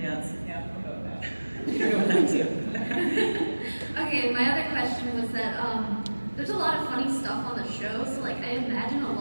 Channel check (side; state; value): both; inverted; correlation -1.00